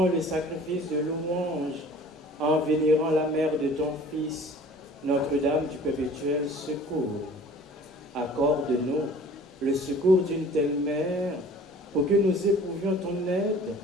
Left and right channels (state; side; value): normal; both; correlation 0.47